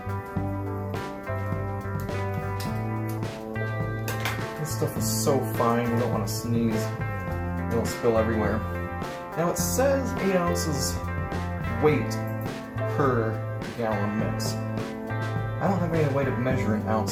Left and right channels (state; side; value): identical; both; correlation 1.00